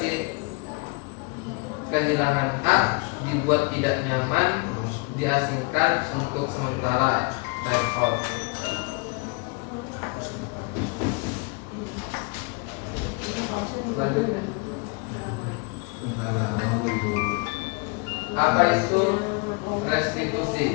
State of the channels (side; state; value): right; quieter; 29.9 dB